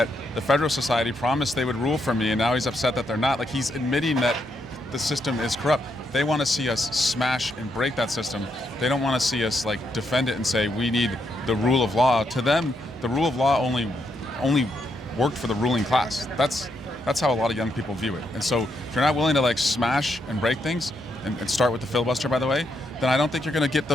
the Federal Society promised they would rule for me, and now he's upset that they're not. Like, he's admitting that the system is corrupt. They want to see us smash and break that system. They don't want to see us like defend it and say we need the rule of law. To them, the rule of law only worked for the ruling class. That's how a lot of young people view it. And so if you're not willing to like smash and break things and start with the filibuster, by the way, then I don't think you're going to get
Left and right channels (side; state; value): both; normal; correlation 0.79